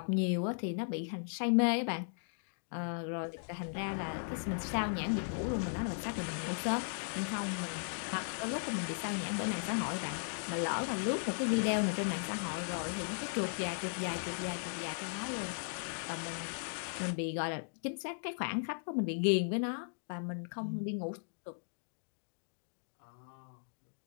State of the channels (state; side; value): silent; right; digital silence